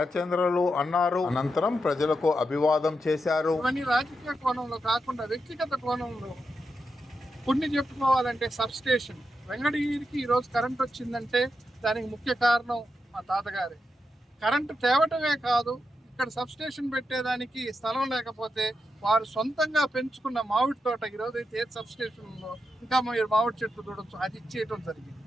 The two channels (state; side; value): normal; both; correlation 0.86